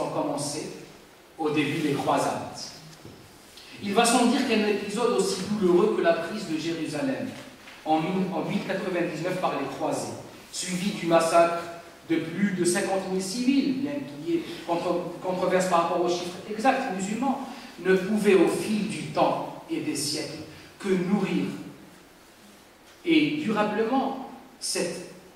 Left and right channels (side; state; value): both; identical; correlation 1.00